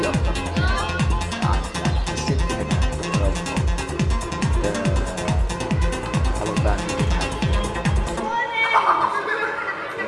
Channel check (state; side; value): identical; both; correlation 1.00